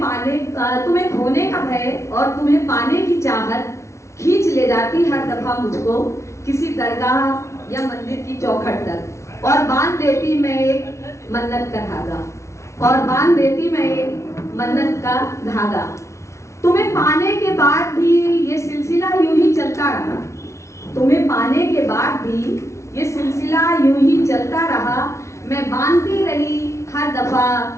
खोने का भय और तुम्हें पाने की चाहत खींच ले जाती हर दफा मुझको किसी दरगाह या मंदिर की चौखट तक, और बांध देती मैं एक मन्नत का धागा, और बांध देती मैं एक मन्नत का धागा। तुम्हें पाने के बाद भी ये सिलसिला यूं ही चलता रहा, तुम्हें पाने के बाद भी ये सिलसिला यूं ही चलता रहा। मैं बांधती रही हर दफा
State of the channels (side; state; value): right; late; 0.14 ms